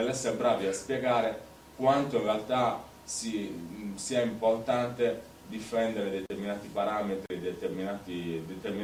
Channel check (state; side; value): identical; both; correlation 1.00